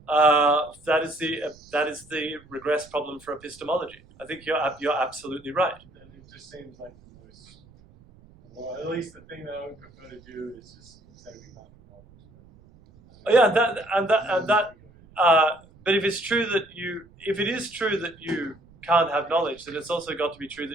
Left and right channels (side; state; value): right; noise; rumble, 26 dB below the sound